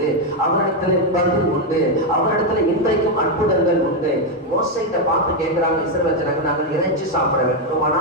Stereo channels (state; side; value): normal; both; correlation 0.04